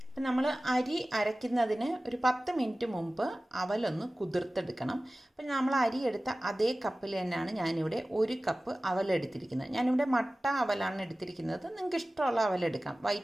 അപ്പം നമ്മൾ അരി അരയ്ക്കുന്നതിന് ഒരു 10 മിനിറ്റ് മുമ്പ് അവലൊന്ന് കുതിർത്തെടുക്കണം. അപ്പം നമ്മൾ അരി എടുത്ത അതേ കപ്പിൽ തന്നെയാണ് ഞാനിവിടെ 1 കപ്പ് അവലെടുത്തിരിക്കുന്നത്. ഞാനിവിടെ മട്ട അവലാണ് എടുത്തിരിക്കുന്നത്. നിങ്ങൾക്ക് ഇഷ്ടമുള്ള അവലെടുക്കാം.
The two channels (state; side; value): normal; both; correlation 0.97